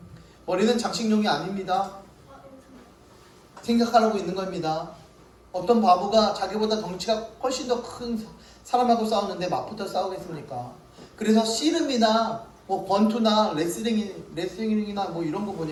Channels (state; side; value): identical; both; correlation 1.00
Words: 머리는 장식용이 아닙니다. 생각하라고 있는 겁니다. 어떤 바보가 자기보다 덩치가 훨씬 더 큰 사람하고 싸우는데 맞붙어 싸우겠습니까? 그래서 씨름이나 권투나 레슬링이나 이런 거